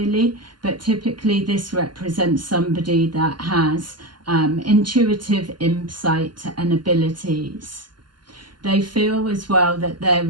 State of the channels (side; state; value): left; late; 0.71 ms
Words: but typically this represents somebody that has intuitive insight and abilities. They feel as well that they're